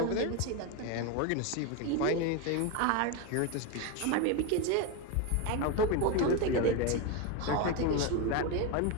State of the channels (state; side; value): different; both; correlation 0.03